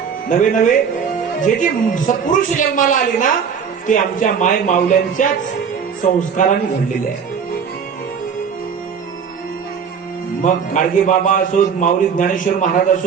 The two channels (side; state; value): left; quieter; 6.7 dB